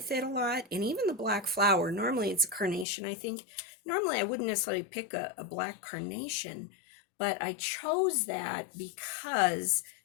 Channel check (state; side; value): drops out; right; at 2.9 s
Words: it a lot, and even the black flower. Normally it's a carnation, I think. Normally I wouldn't necessarily pick a black carnation, but I chose that because